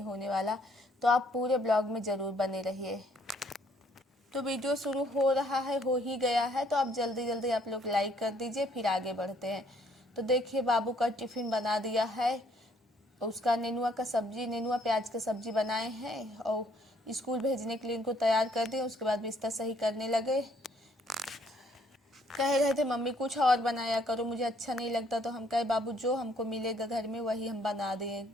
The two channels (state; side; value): normal; both; correlation 0.65